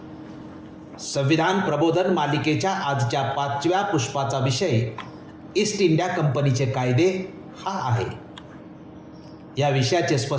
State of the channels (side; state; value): both; identical; correlation 1.00